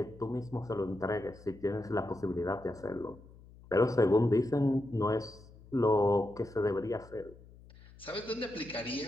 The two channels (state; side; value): noise; left; hum, 22 dB below the sound